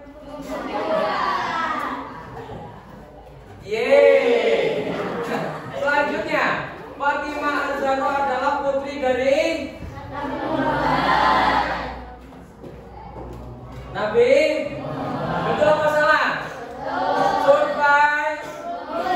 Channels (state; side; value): identical; both; correlation 1.00